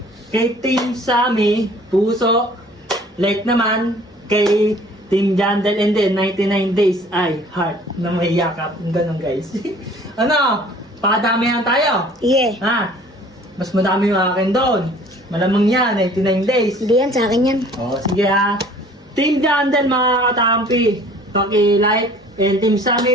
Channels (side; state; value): both; normal; correlation 0.52